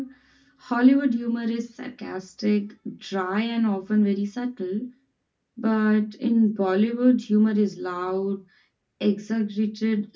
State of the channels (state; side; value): identical; both; correlation 1.00